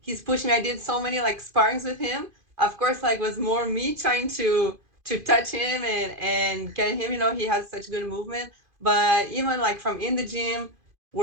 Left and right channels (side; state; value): left; late; 2.5 ms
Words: pushing me. I did so many like sparrings with him. Of course, like was more me trying to touch him and get him. He has such good movement. But even like from in the gym,